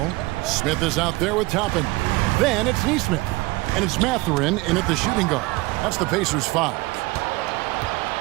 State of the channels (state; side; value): quieter; left; 21.8 dB